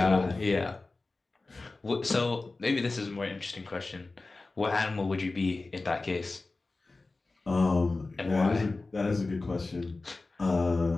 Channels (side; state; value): right; quieter; 3.4 dB